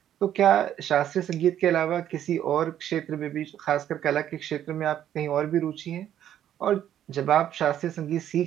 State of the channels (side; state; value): left; quieter; 10.9 dB